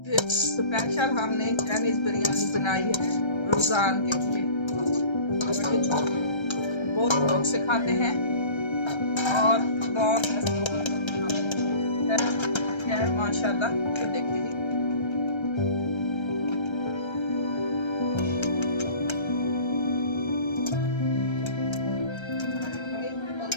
स्पेशल हमने चाइनीज बिरयानी बनाई है रमजान के लिए। बहुत लोग से खाते हैं और बहुत है माशाल्लाह। ये देखिए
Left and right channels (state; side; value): late; right; 1.3 ms